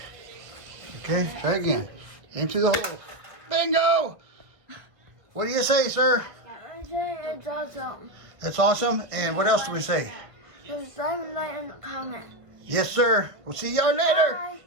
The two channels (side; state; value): left; late; 1.3 ms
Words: Okay, try again. Aim through the hole. Bingo! What do you say, sir? I say it's awesome. That's awesome. And what else do we say? Subscribe and like and comment. Yes, sir. We'll see y'all later. Bye.